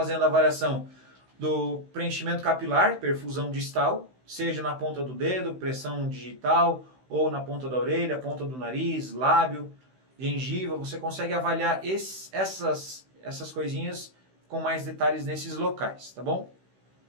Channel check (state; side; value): late; left; 16 ms